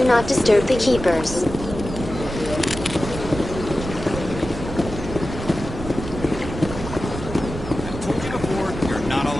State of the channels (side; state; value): right; noise; rumble, 9 dB below the sound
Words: not disturb the keepers. Told you before, you're not